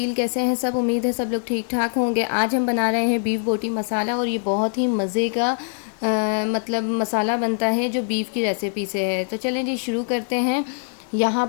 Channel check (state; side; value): silent; right; 58 dB below the other